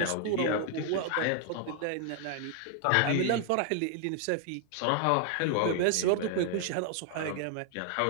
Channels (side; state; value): both; different; correlation 0.00